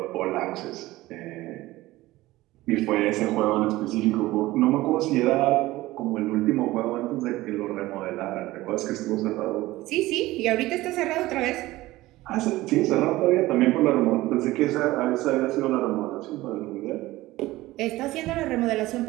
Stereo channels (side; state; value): left; quieter; 17.9 dB